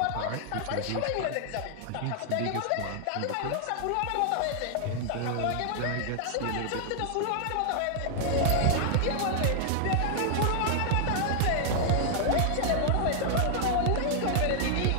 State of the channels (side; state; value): both; different; correlation 0.00